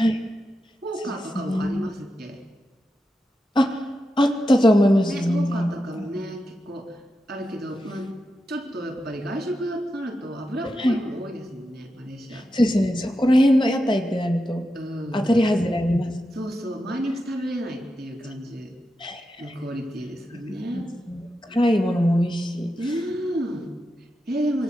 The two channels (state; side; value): normal; both; correlation 0.89